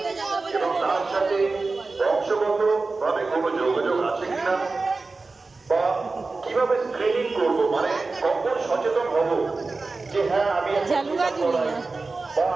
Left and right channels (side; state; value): left; quieter; 3.8 dB